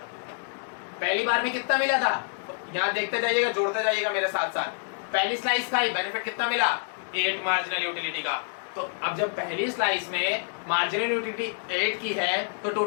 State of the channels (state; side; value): silent; right; digital silence